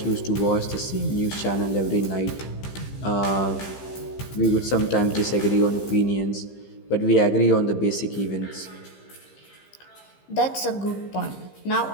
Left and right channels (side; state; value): right; late; 15 ms